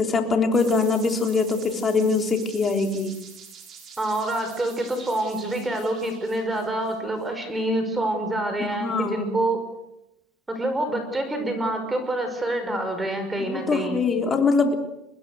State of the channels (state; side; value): normal; both; correlation 0.64